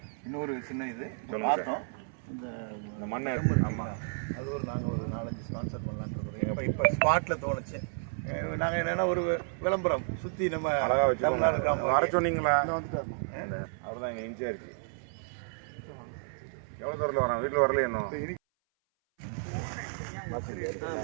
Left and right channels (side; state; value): left; silent; 57 dB below the other